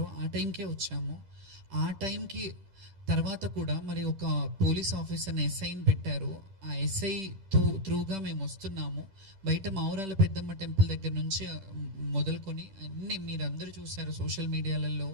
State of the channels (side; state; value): left; late; 10 ms